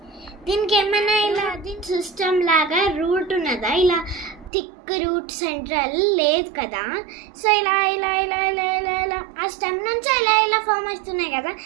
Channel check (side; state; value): left; drops out; at 4.5 s